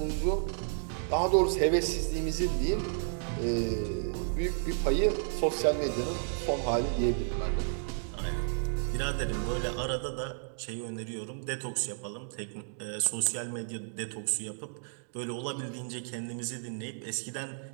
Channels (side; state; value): left; silent; digital silence